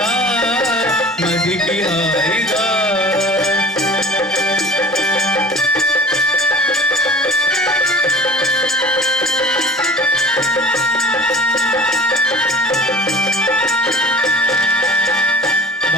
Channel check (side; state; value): both; normal; correlation 0.42